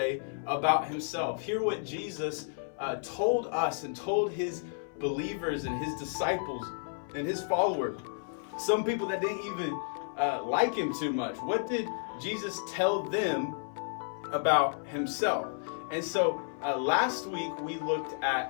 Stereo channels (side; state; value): right; silent; 57 dB below the other